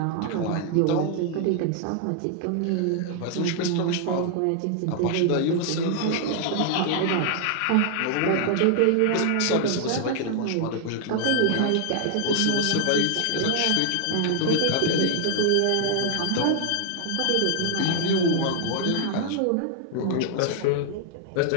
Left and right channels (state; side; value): different; both; correlation 0.00